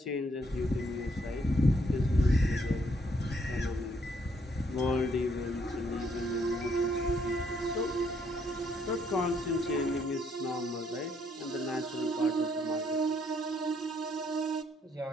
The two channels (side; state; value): both; normal; correlation 0.70